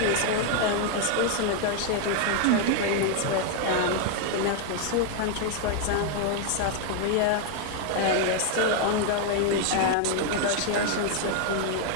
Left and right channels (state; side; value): different; both; correlation 0.00